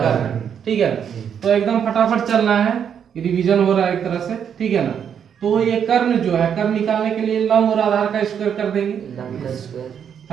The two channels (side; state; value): left; quieter; 8.1 dB